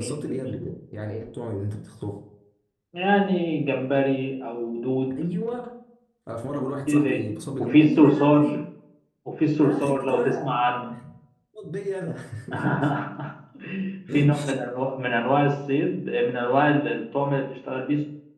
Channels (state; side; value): identical; both; correlation 1.00